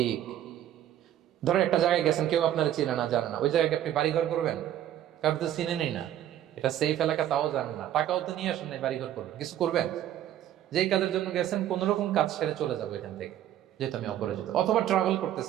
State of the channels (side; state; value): left; quieter; 11.7 dB